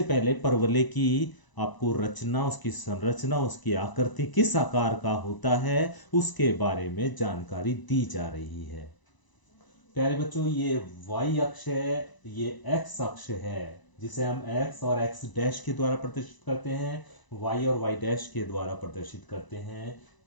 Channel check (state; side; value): late; right; 1.0 ms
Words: पहले परवलय की आपको रचना, उसकी संरचना, उसकी आकृति किस आकार का होता है उसके बारे में जानकारी दी जा रही है। प्यारे बच्चों, ये y अक्ष है, ये x अक्ष है, जिसे हम x और x डैश के द्वारा प्रदर्शित करते हैं, y और y डैश के द्वारा प्रदर्शित करते हैं।